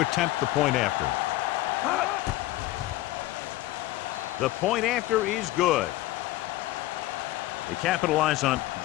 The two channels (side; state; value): right; quieter; 16.8 dB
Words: the point after. The point after is good. They capitalize on